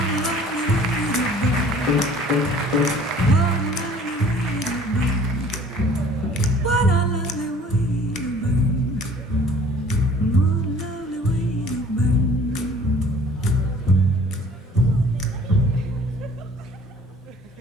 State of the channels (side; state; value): both; normal; correlation 0.52